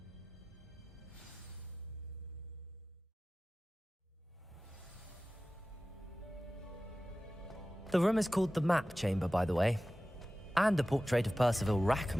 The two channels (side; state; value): both; normal; correlation 0.95